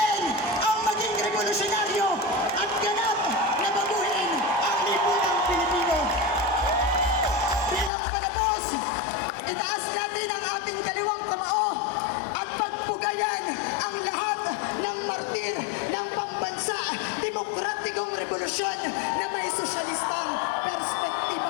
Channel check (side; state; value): right; drops out; at 7.9 s